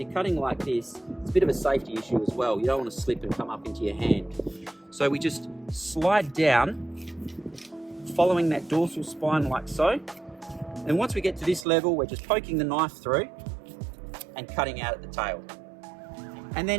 cutting like this, it's a bit of a safety issue as well. You don't want to slip and come up into your hand. So we just slide down following that dorsal spine like so, and once we get to this level, we're just poking the knife through and cutting out at the tail. And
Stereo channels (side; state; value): left; drops out; at 11.7 s